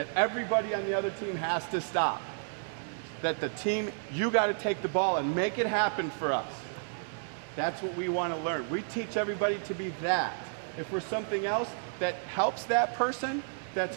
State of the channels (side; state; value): left; silent; digital silence